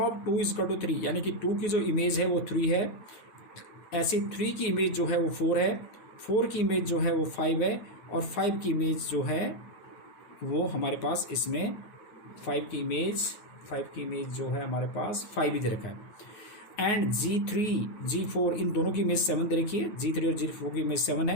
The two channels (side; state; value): right; late; 9.5 ms